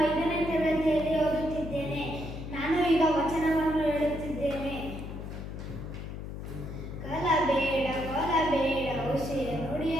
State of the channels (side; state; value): left; noise; hum, 8 dB below the sound